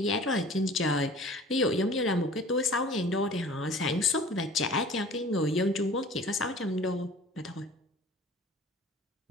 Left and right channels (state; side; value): normal; both; correlation 0.45